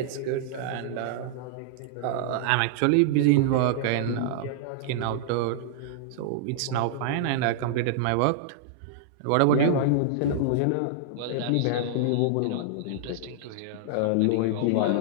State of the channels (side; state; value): both; different; correlation -0.01